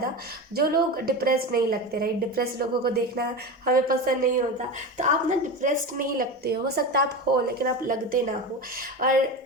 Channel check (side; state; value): both; normal; correlation 0.24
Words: जो लोग डिप्रेस्ड नहीं लगते, राइट। डिप्रेस्ड लोगों को देखना हमें पसंद नहीं होता। तो आप ना डिप्रेस्ड नहीं लगते हो सकता आप हो, लेकिन आप लगते ना हो।